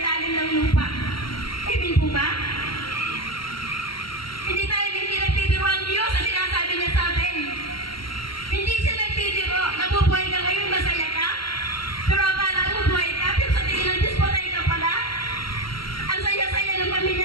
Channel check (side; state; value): right; late; 0.73 ms